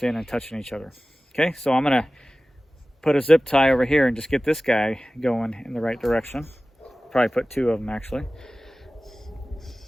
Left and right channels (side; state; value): both; normal; correlation 0.97